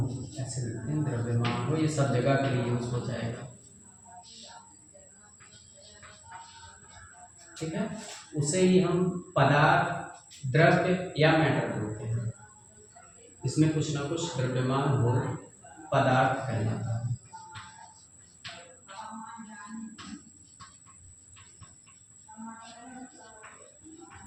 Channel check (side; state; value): both; identical; correlation 1.00